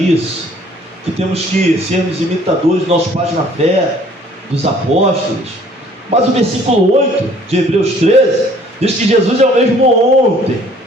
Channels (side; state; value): both; normal; correlation 0.57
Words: que temos que sermos imitadores dos nossos pais na fé, dos apóstolos. Mas o versículo 8 de Hebreus 13 diz que Jesus é o mesmo ontem.